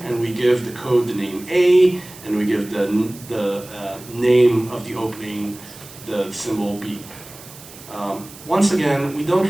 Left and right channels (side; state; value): right; noise; hiss, 18 dB below the sound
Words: and we give the code the name A, and we give the name of the opening the symbol B. Once again, we don't